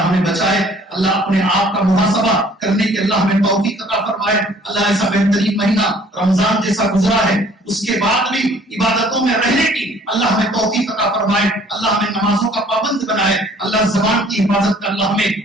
ہمیں بچائے، اللہ اپنے آپ کا محاسبہ کرنے کی اللہ ہمیں توفیق عطا فرمائے۔ اللہ ایسا بہترین مہینہ رمضان جیسا گزرا ہے، اس کے بعد بھی عبادتوں میں رہنے کی اللہ ہمیں توفیق عطا فرمائے، اللہ ہمیں نمازوں کا پابند بنائے، اللہ زبان کی حفاظت کا اللہ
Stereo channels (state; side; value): normal; both; correlation 0.56